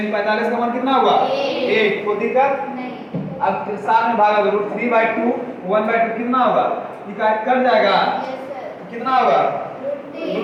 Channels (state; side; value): identical; both; correlation 1.00